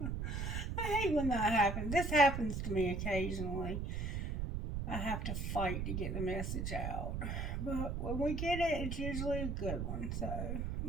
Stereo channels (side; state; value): right; noise; rumble, 2 dB below the sound